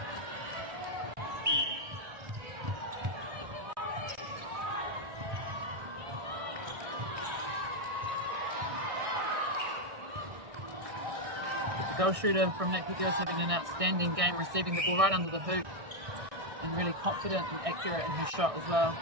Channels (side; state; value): left; late; 1.6 ms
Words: The goal shooter from Napier Girls having an outstanding game, receiving the ball right under the hoop and really confident and accurate in her shot as well.